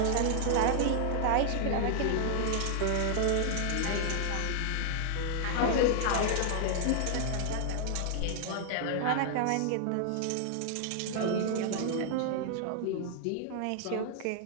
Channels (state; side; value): different; both; correlation 0.00